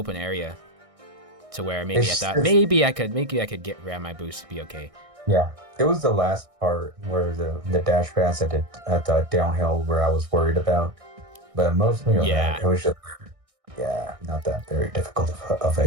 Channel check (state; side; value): late; left; 1.6 ms